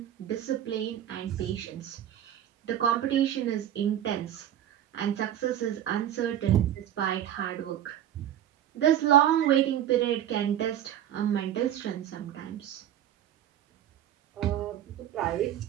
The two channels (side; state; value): left; quieter; 11.1 dB